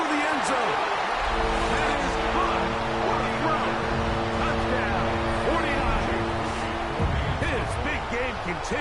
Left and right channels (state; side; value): identical; both; correlation 1.00